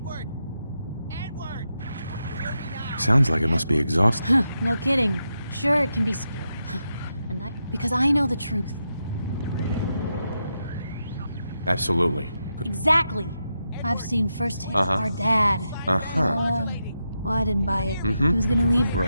Sounds like it must be exhausting. No kidding. Sure, it can be scary. Because I know the truth. Absolutely. Exactly. I've seen firsthand our dad. Well, I didn't buy it. He was gonna leave.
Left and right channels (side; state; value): both; inverted; correlation -0.86